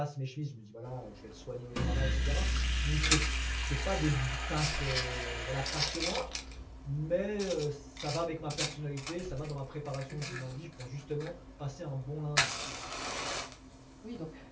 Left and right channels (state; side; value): identical; both; correlation 1.00